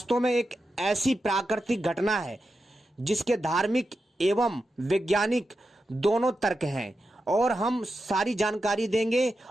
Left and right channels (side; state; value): both; normal; correlation 0.89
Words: में एक ऐसी प्राकृतिक घटना है जिसके धार्मिक एवं वैज्ञानिक दोनों तर्क हैं और हम सारी जानकारी देंगे